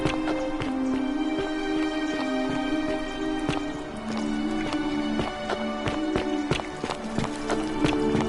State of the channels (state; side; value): identical; both; correlation 1.00